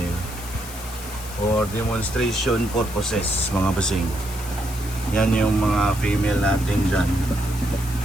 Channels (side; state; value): left; noise; hiss, 14 dB below the sound